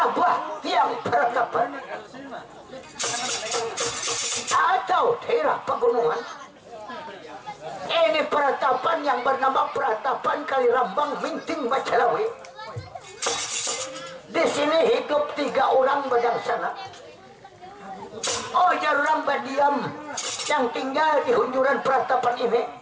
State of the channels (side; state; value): both; identical; correlation 1.00